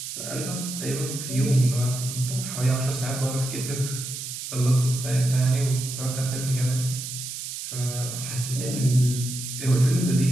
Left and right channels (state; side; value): noise; right; hiss, 7 dB below the sound